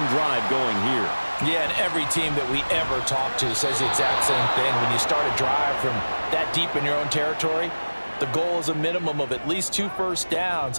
drive going here. Yeah, and every team that we ever talk to says the exact same thing. When you start a drive from that deep in your own territory, the goal is a minimum of at least 2 first downs,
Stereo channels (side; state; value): both; inverted; correlation -1.00